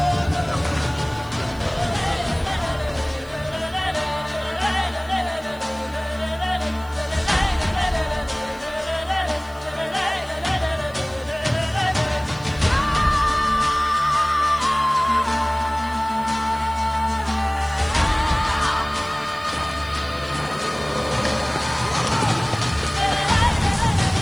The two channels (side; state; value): right; noise; hiss, 25 dB below the sound